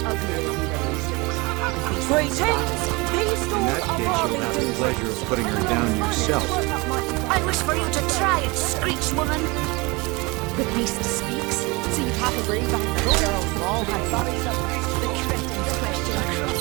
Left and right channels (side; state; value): left; quieter; 25.6 dB